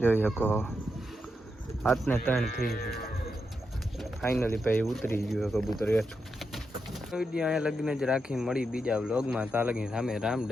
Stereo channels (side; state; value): both; normal; correlation 0.85